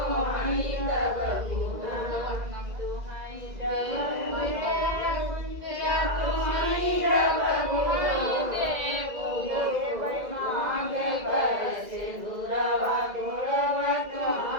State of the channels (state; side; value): late; left; 2.0 ms